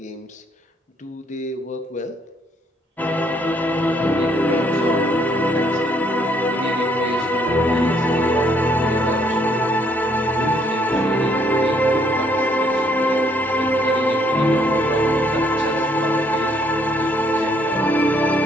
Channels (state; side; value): normal; both; correlation 0.68